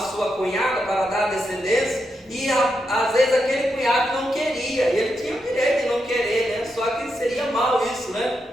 cunhada para dar descendência, e às vezes aquele cunhado não queria, ele tinha o direito de não querer, né? Só que seria mal isso, né?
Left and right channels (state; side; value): normal; both; correlation 0.84